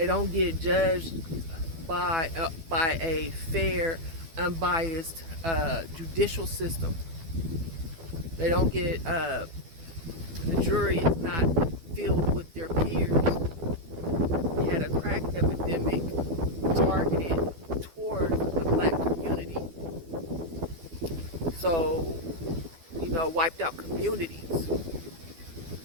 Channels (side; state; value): left; late; 12 ms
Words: don't get judged by a fair, unbiased judicial system. They don't get, the jury is not filled with their peers. We had a crack epidemic targeted towards the black community. So, wiped out communities.